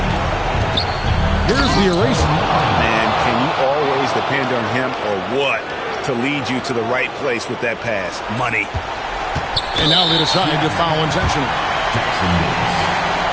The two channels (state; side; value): identical; both; correlation 1.00